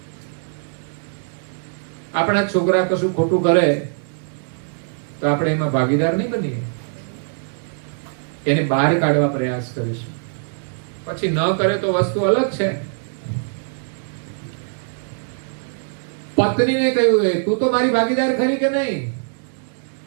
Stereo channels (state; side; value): silent; left; digital silence